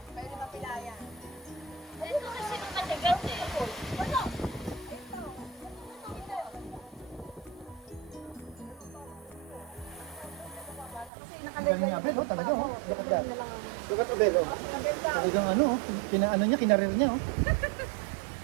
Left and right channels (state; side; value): drops out; left; at 11.1 s